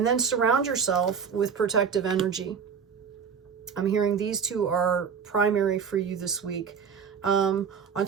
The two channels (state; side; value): quieter; left; 6.7 dB